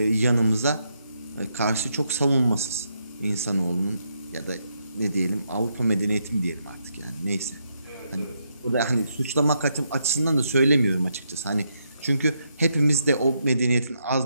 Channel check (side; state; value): both; inverted; correlation -0.79